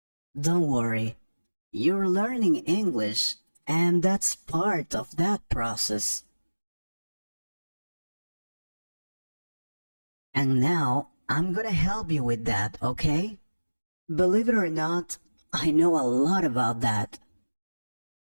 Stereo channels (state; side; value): inverted; both; correlation -1.00